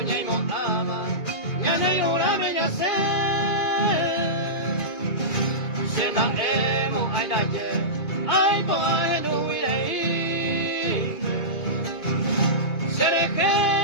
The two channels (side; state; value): right; late; 2.3 ms